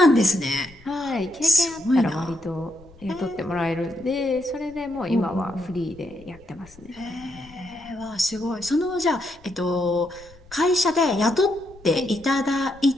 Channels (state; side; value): noise; left; rumble, 24 dB below the sound